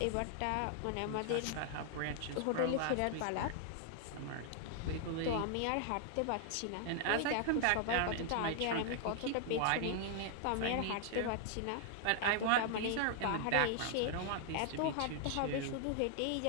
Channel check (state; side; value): different; both; correlation 0.00